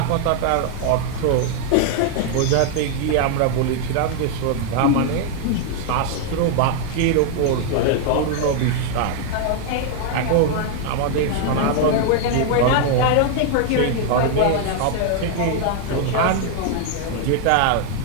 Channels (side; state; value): both; different; correlation 0.00